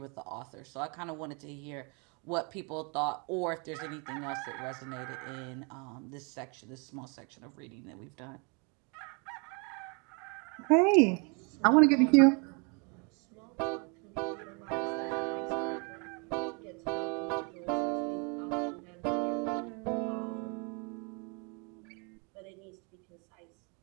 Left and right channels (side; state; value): left; quieter; 33.8 dB